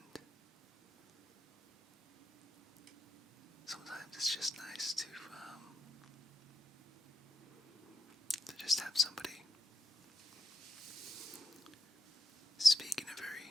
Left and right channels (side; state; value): both; normal; correlation 0.78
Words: sometimes it's just nice to just have somebody speak in a